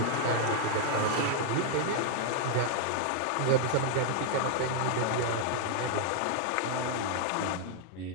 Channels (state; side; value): different; both; correlation 0.00